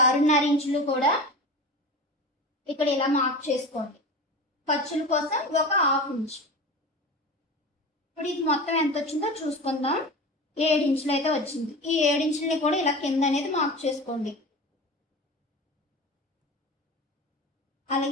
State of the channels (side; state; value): both; normal; correlation 0.31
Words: ఇంచులు కూడా ఇక్కడ ఇలా మార్క్ చేసుకోండి. ఖర్చుల కోసం ఒక 1/2 ఇంచ్. ఇప్పుడు ఇది మొత్తం ఎంత వచ్చిందో చూసుకుందాం. 7 ఇంచులు అయితే వచ్చింది. ఈ 7 ఇంచులని కూడా ఇలా కింద అనేది మార్క్ చేసుకోండి.